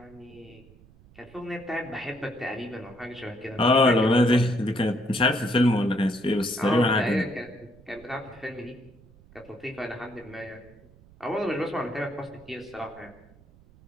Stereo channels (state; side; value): noise; right; rumble, 25 dB below the sound